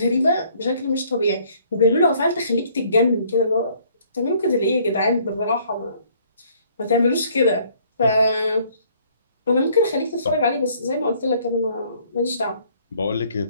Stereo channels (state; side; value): inverted; both; correlation -0.61